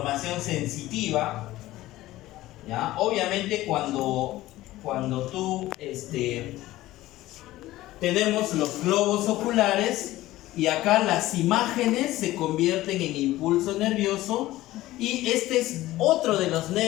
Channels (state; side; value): quieter; right; 16.4 dB